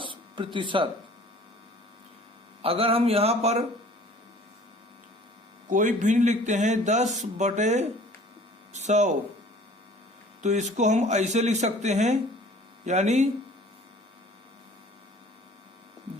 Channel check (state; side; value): normal; both; correlation 0.50